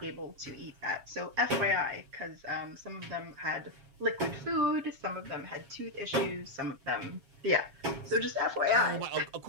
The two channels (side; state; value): left; late; 7.5 ms